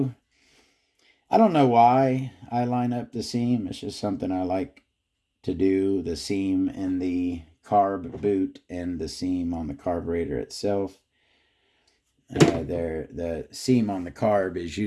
I don't know why I line up the seam. It's just something I like to do. The seam in the carb boot and the seam on the carburetor itself. The seam on the carb is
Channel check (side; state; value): both; identical; correlation 1.00